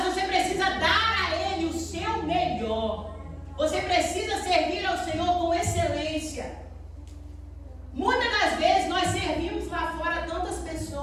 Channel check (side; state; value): both; identical; correlation 1.00